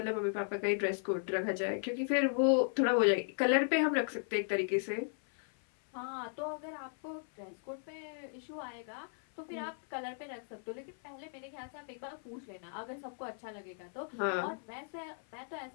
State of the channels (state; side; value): silent; right; 54 dB below the other